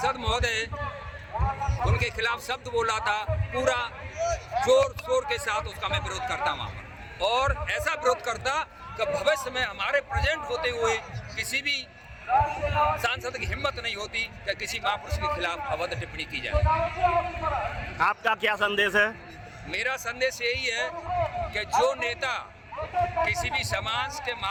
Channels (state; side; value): identical; both; correlation 1.00